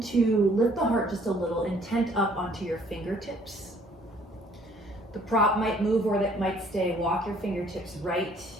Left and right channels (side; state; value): both; normal; correlation 0.60